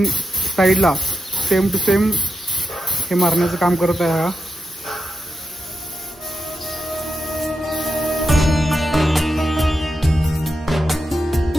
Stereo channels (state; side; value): normal; both; correlation 0.86